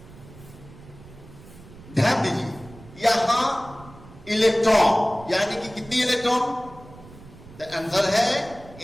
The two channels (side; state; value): right; noise; rumble, 20 dB below the sound